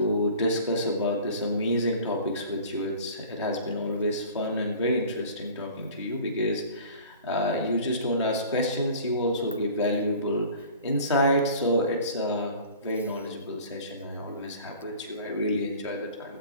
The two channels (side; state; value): both; inverted; correlation -0.44